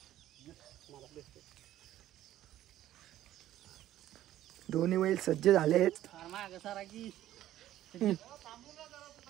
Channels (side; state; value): left; quieter; 13.3 dB